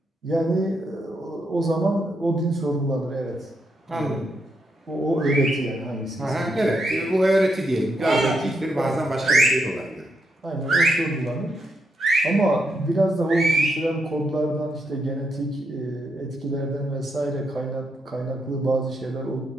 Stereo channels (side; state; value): both; normal; correlation 0.80